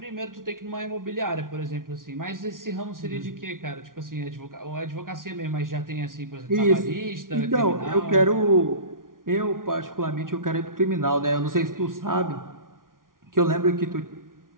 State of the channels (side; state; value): left; late; 0.90 ms